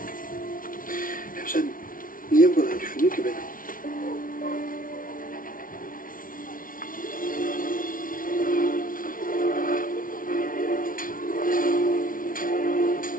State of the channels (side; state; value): right; late; 0.40 ms